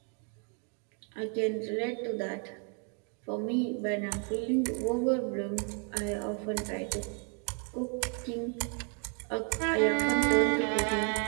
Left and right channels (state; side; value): quieter; left; 39.2 dB